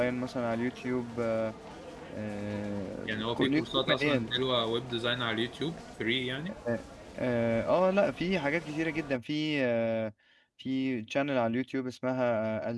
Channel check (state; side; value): identical; both; correlation 1.00